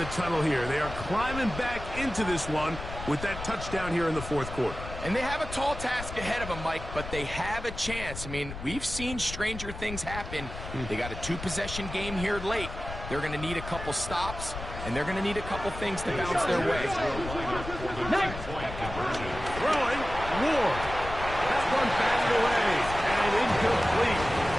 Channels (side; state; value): left; noise; rumble, 9 dB below the sound